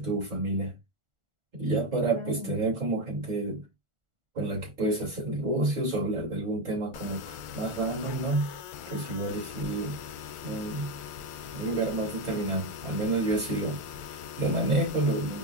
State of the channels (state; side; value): late; left; 1.4 ms